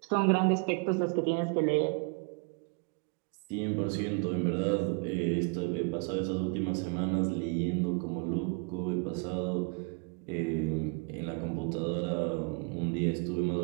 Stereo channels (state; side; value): quieter; left; 34.2 dB